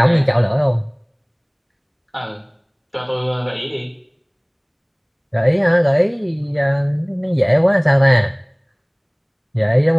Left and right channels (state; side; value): identical; both; correlation 1.00